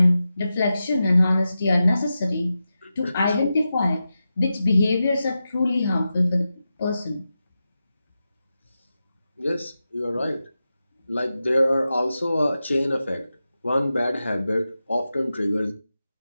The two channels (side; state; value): both; inverted; correlation -0.91